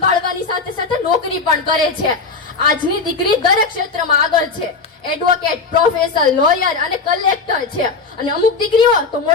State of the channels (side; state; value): right; quieter; 4.3 dB